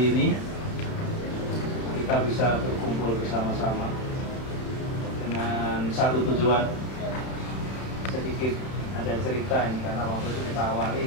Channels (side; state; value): right; late; 32 ms